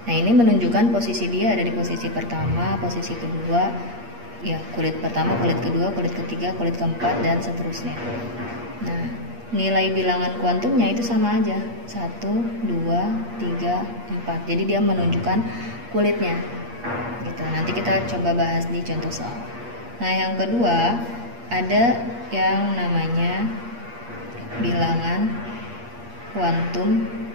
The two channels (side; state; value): left; late; 8.5 ms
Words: ini menunjukkan posisi dia ada di posisi pertama, posisi kedua, ya kulit pertama, kulit kedua, kulit ketiga, kulit keempat dan seterusnya. Nah, nilai bilangan kuantumnya itu sama aja, 1, 2, 3, 4. Jadi dia menunjukkan kulitnya. Gitu. Nanti kita coba bahas di contoh soal. Nah, yang kedua ada yang namanya bilangan kuantum